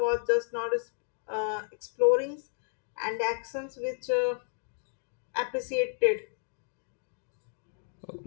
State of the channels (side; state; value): right; silent; 56 dB below the other